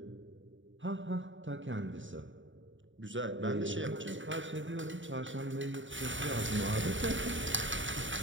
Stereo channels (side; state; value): left; late; 0.55 ms